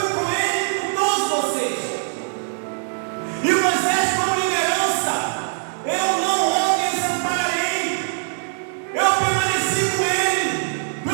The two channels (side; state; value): left; silent; digital silence